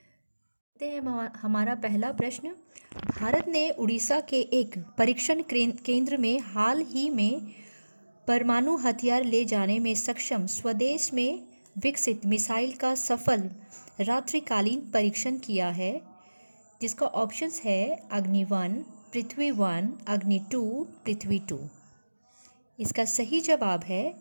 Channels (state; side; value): inverted; both; correlation -1.00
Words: हैं हमारा पहला प्रश्न। भारत ने उड़ीसा के एक परीक्षण केंद्र में हाल ही में परमाणु हथियार ले जाने में सक्षम स्वदेश में विकसित मिसाइल का सफल रात्रिकालीन परीक्षण किया है, जिसका ऑप्शंस है अग्नि 1, पृथ्वी 1, अग्नि 2, पृथ्वी 2। इसका सही जवाब है